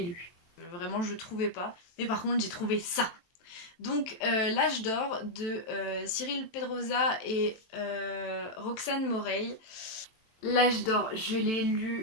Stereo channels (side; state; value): right; late; 23 ms